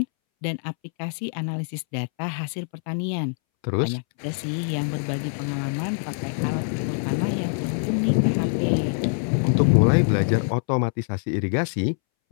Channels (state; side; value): silent; right; 62 dB below the other